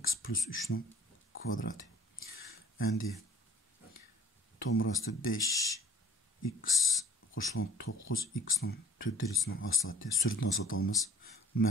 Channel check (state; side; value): normal; both; correlation 0.51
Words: plus 3'nin kvadratı. Endi tomurası 5x koşulan 9x'nin 4 derecesinin hasılatı. Sürdün hasılatı almaz.